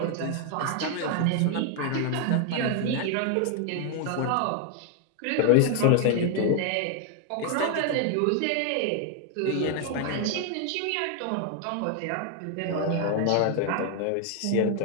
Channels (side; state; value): both; different; correlation 0.00